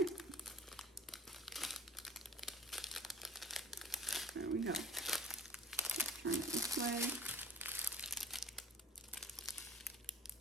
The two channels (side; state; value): both; normal; correlation 0.46